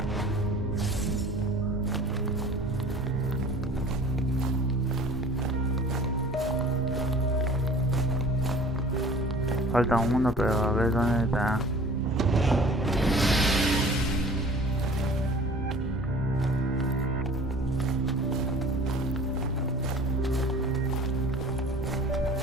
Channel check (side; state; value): both; normal; correlation 0.46